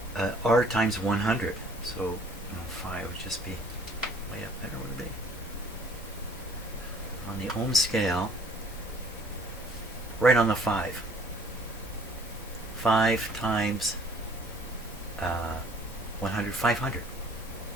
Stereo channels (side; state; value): both; normal; correlation 0.56